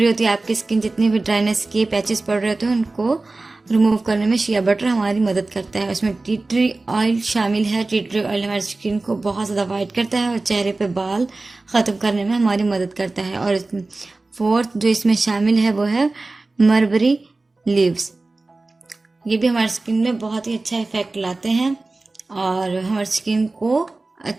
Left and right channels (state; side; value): quieter; left; 3.3 dB